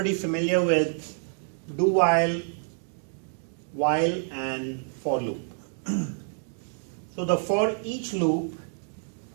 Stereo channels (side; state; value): left; silent; 60 dB below the other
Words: familiar with do while, and for loop. So the for each loop